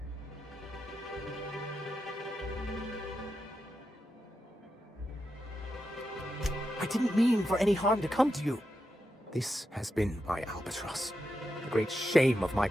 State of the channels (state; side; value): normal; both; correlation 0.87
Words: I didn't mean for any harm to come to you. This has been my albatross. The great shame of my